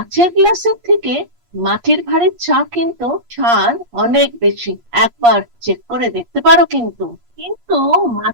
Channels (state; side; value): late; left; 8.5 ms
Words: গ্লাসের থেকে মাটির ভাঁড়ের চা কিন্তু স্বাদ অনেক বেশি। একবার চেক করে দেখতে পারো। কিন্তু কিন্তু